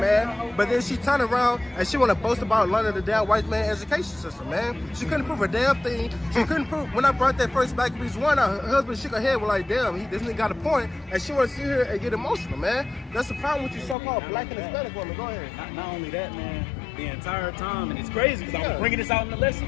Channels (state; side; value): drops out; right; at 14.0 s